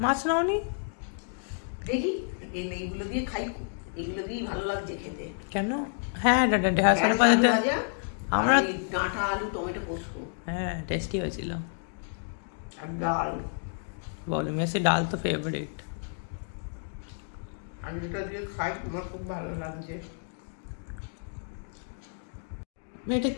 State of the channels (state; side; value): silent; right; digital silence